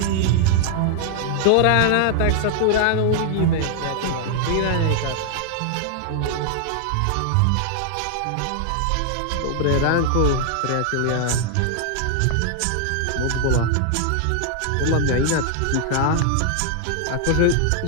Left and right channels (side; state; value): both; different; correlation 0.00